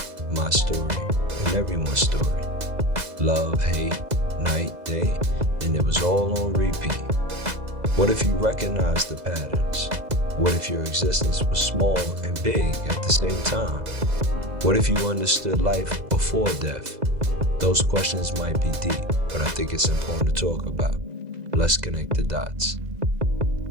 my story, and everyone's story. Love, hate, night, day, and it was all on repeat. What if you recognized the patterns? What if your existence was small and big at the same time? What if you understood life before death? Those questions might be deep, but I think it's important to talk about. Let's connect the dots.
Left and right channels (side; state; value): left; late; 2.0 ms